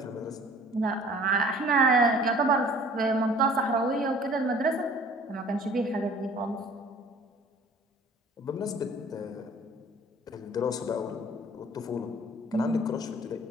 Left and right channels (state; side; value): normal; both; correlation 0.50